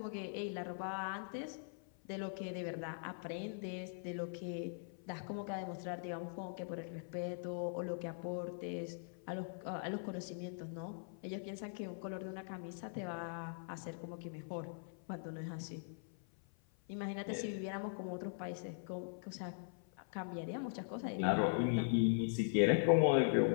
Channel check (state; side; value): silent; right; 50 dB below the other